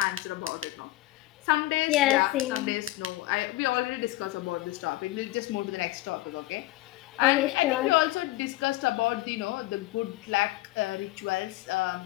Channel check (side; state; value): right; quieter; 17.3 dB